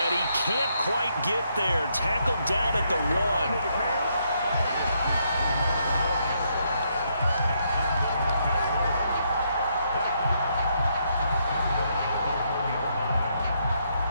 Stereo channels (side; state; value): both; inverted; correlation -0.75